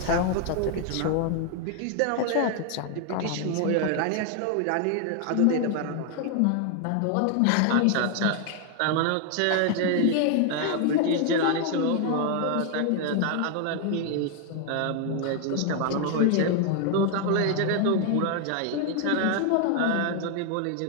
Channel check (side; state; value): both; different; correlation 0.00